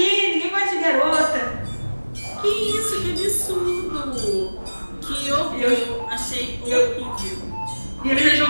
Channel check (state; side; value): inverted; both; correlation -1.00